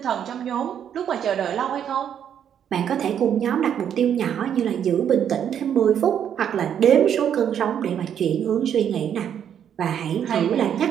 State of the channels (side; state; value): left; quieter; 9.0 dB